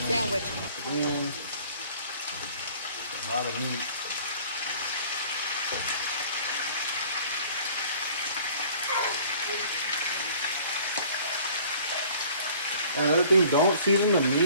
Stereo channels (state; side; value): inverted; both; correlation -0.51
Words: And a lot of meat. And another thing, don't season the